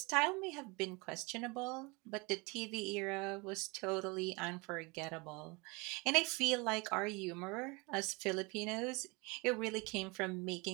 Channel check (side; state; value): left; quieter; 27.4 dB